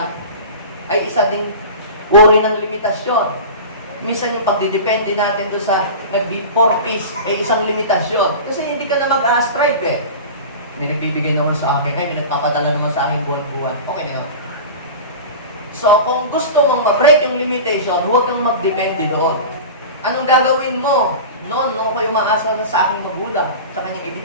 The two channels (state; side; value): inverted; both; correlation -0.32